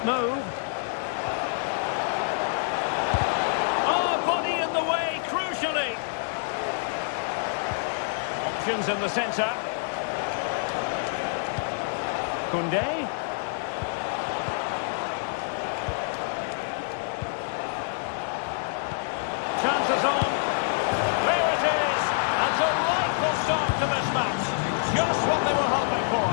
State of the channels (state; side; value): silent; right; 57 dB below the other